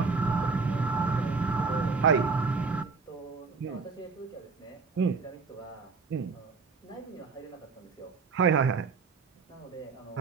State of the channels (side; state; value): left; quieter; 4.6 dB